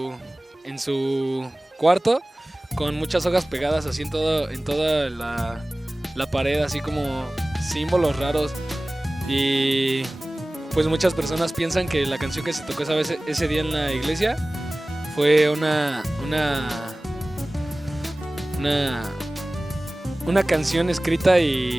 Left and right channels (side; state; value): both; normal; correlation 0.98